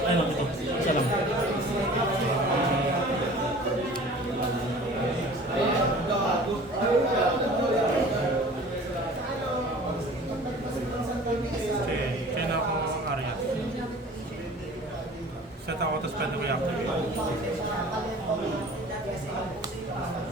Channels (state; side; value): normal; both; correlation 0.45